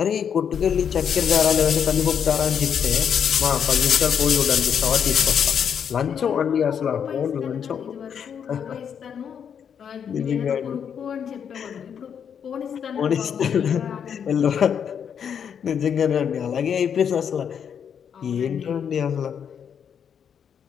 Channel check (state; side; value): quieter; right; 7.8 dB